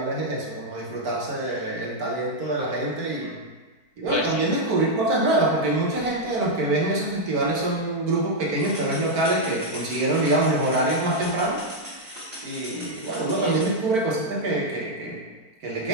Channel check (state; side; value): late; left; 4.5 ms